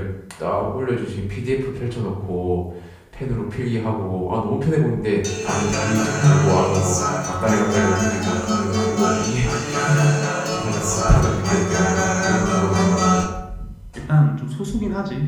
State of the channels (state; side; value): identical; both; correlation 1.00